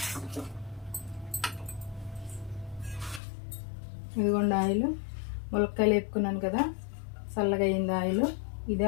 ఇదిగోండి ఆయిల్. ములక్కాయలు వేపుకున్నాను కదా, చల్లగా అయింది ఆయిల్. ఇదే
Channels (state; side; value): drops out; right; at 3.2 s